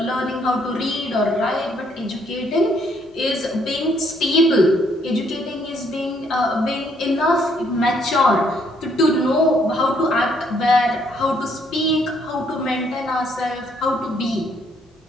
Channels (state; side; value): normal; both; correlation 0.69